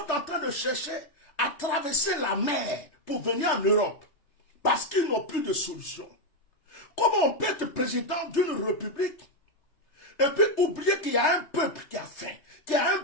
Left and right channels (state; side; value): late; right; 3.3 ms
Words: en train de chercher à traverser la mer pour venir en Europe. Parce qu'ils n'ont plus de solution. Comment on peut être président d'une république et puis oublier qu'il y a un peuple qui a faim, qu'il y a un